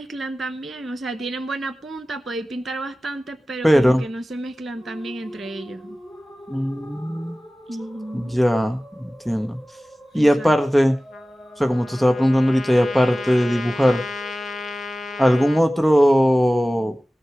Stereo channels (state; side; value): normal; both; correlation 0.97